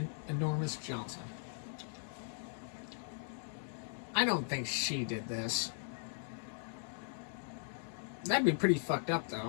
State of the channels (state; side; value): silent; right; 52 dB below the other